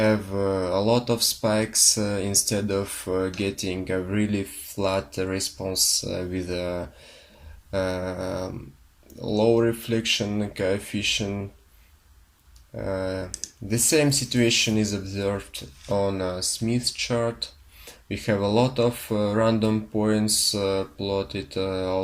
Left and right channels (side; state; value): both; identical; correlation 1.00